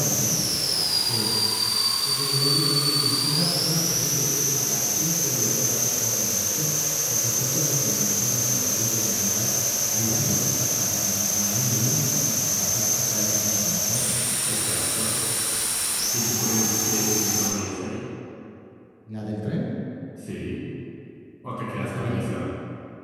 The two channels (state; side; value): identical; both; correlation 1.00